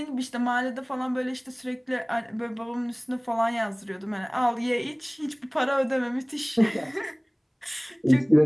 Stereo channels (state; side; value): identical; both; correlation 1.00